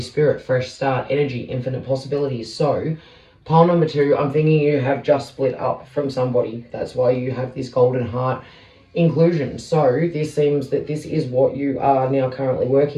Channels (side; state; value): both; identical; correlation 1.00